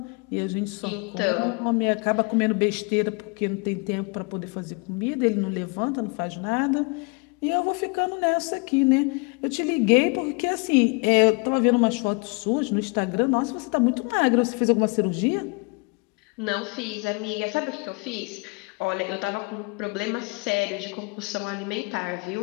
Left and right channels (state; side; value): quieter; right; 30.9 dB